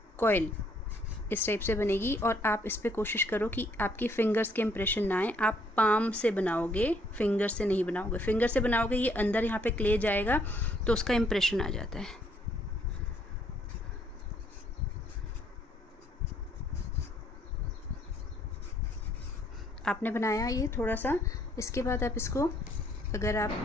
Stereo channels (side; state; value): both; normal; correlation 0.67